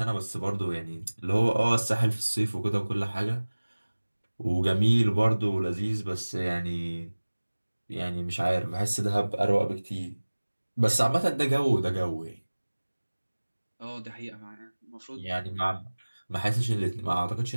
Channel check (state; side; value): inverted; both; correlation -1.00